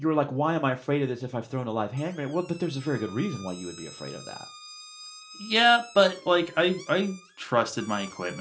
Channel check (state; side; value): identical; both; correlation 1.00